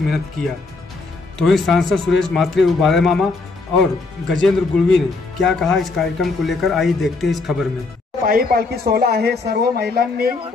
किया। तो वहीं सांसद सुरेश म्हात्रे उर्फ बाला मामा और गजेंद्र गुड़वी ने क्या कहा इस कार्यक्रम को लेकर, आइए देखते हैं इस खबर में। पायी पालखी सोहळा आहे, सर्व महिलांनी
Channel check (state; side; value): quieter; right; 3.7 dB